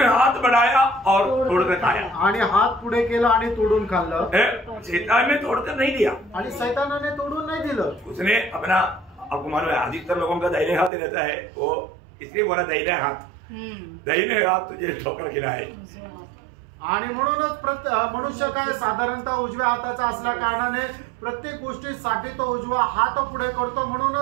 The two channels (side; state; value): left; drops out; at 10.9 s